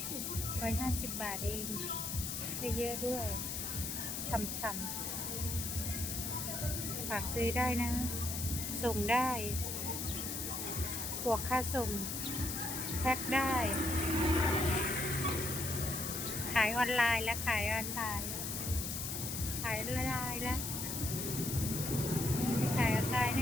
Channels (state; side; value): noise; left; hiss, 3 dB below the sound